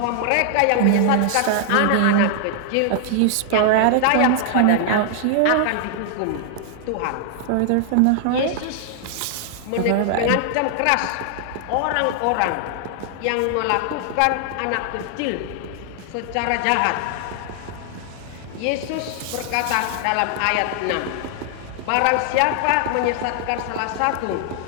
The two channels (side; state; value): both; different; correlation 0.00